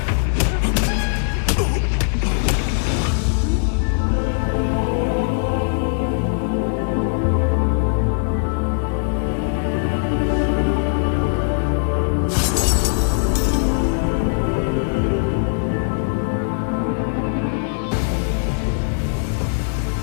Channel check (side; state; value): right; silent; 66 dB below the other